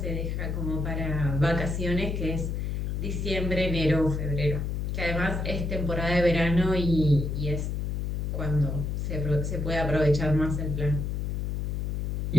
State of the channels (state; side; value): noise; left; hum, 1 dB below the sound